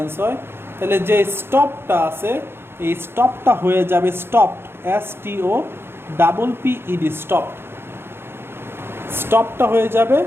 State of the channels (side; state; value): left; late; 0.11 ms